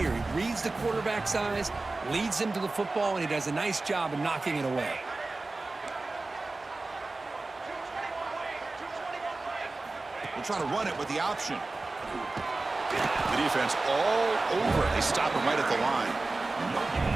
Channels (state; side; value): quieter; left; 3.3 dB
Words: He reads the quarterback's eyes, leads him to the football, and he does a nice job of knocking it away. We'll try to run it with the option. The defense all over it. They stop him right at the line.